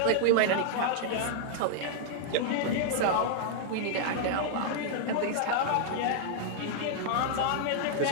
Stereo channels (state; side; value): different; both; correlation -0.01